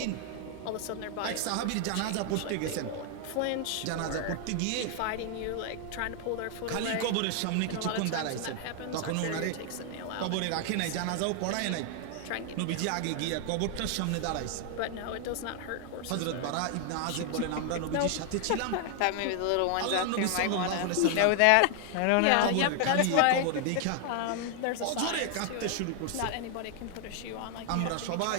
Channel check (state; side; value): different; both; correlation 0.00